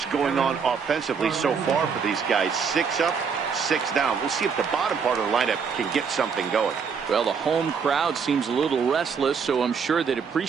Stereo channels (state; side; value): quieter; left; 6.1 dB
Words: going on offensively so far for these guys. 6 up, 6 down. We'll see if the bottom part of the lineup can get something going. Well, the home crowd seems a little restless, so I'm sure they'd